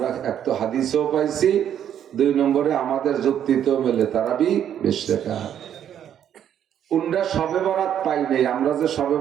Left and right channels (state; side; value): quieter; left; 9.7 dB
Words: এক তো হাদিসেও পাইছি, 2 নম্বরে আমাদের যুক্তিতেও মেলে তারাবি 20 রাকাত। উনরা শবে বরাত পাই নাই, আমরা যে শবে